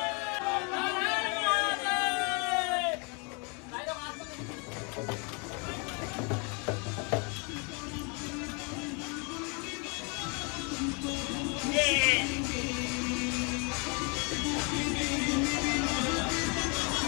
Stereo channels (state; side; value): quieter; right; 33.7 dB